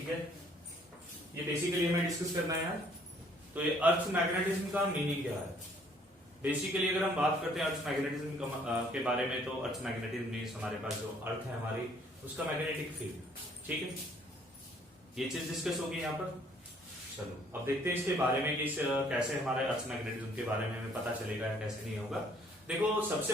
है, ये बेसिकली हमें डिस्कस करना है यार। तो ये अर्थ मैग्नेटिज्म का मीनिंग क्या है? बेसिकली अगर हम बात करते हैं अर्थ मैग्नेटिज्म के बारे में, तो अर्थ मैग्नेटिज्म मीन्स हमारे पास जो अर्थ है हमारी, उसका मैग्नेटिक फील्ड। ठीक है, ये चीज डिस्कस होगी यहाँ पर। चलो अब देखते हैं इसके बारे में कि कैसे हमारे अर्थ मैग्नेटिज्म के बारे में हमें पता चलेगा या कैसे नहीं होगा। देखो, सबसे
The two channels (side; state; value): both; normal; correlation 0.61